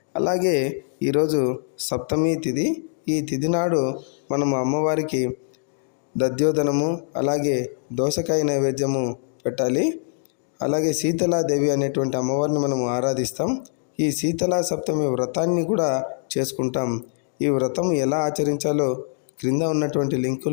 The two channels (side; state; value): right; silent; digital silence